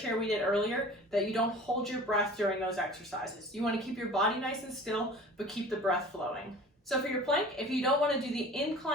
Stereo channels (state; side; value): normal; both; correlation 0.43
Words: we did earlier that you don't hold your breath during those exercises. You want to keep your body nice and still, but keep the breath flowing. So for your plank, if you don't want to do the